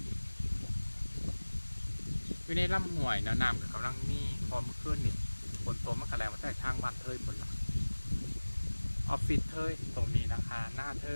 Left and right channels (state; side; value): inverted; both; correlation -1.00